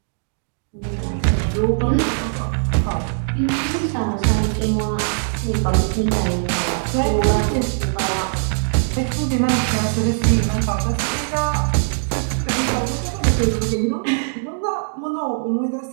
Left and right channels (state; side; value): silent; left; digital silence